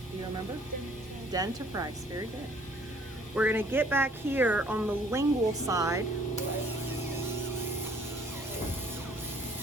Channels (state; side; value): normal; both; correlation 0.59